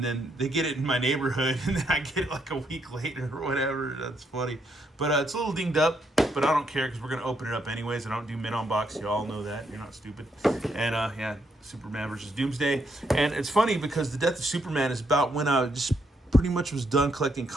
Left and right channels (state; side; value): normal; both; correlation 0.76